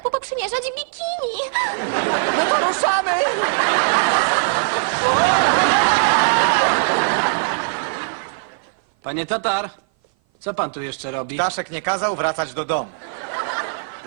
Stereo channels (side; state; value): left; silent; 57 dB below the other